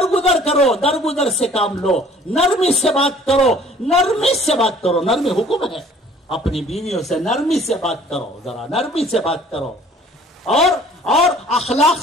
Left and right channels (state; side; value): normal; both; correlation 0.53